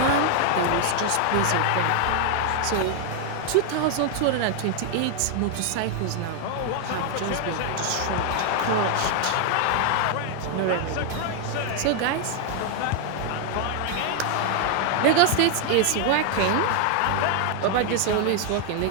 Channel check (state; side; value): different; both; correlation 0.00